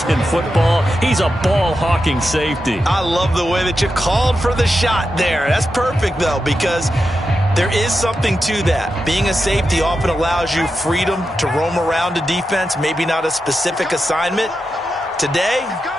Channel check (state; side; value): normal; both; correlation 0.89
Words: in football. He's a ball-hawking safety. I love the way that you called for the shot there. That's perfect, though, because there is something to that. Being a safety often allows you freedom to roam around a defense, maybe not a specific assignment. Today,